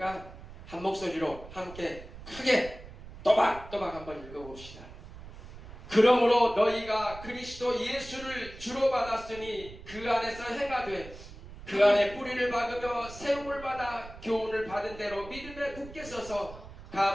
한 목소리로 함께 크게 또박또박 한번 읽어봅시다. 그러므로 너희가 그리스도 예수를 주로 받았으니 그 안에서 행하되 그 안에 뿌리를 박으며 세움을 받아 교훈을 받은 대로 믿음에 굳게 서서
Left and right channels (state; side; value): noise; right; rumble, 15 dB below the sound